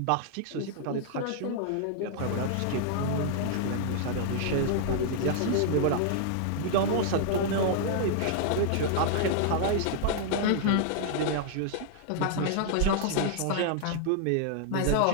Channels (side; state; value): both; different; correlation 0.00